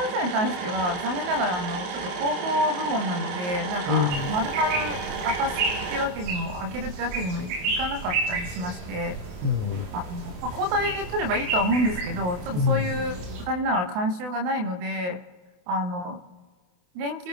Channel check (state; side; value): late; left; 28 ms